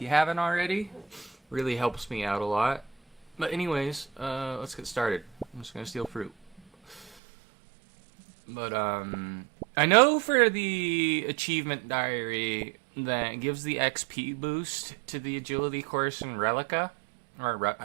you haven't already. Really helps me out a lot. But anyways, let's get started. I'm just gonna steal fruit. But, I know for the achievement diary that gives the XP boost to the agility course in Relica. Or,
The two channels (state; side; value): drops out; left; at 7.1 s